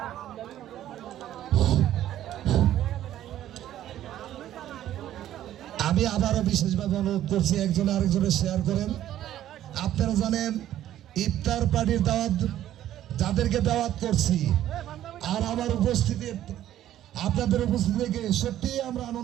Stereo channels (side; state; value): left; quieter; 12.4 dB